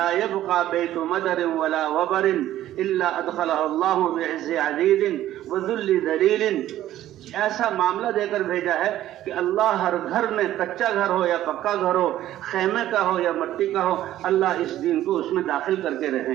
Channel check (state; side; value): quieter; left; 13.3 dB